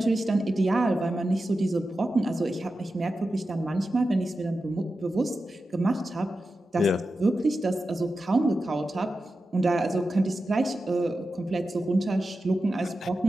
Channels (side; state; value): both; normal; correlation 0.92